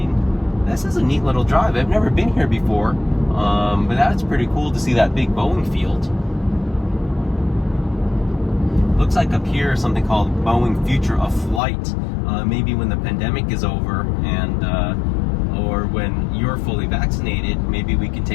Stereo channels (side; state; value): right; drops out; at 11.6 s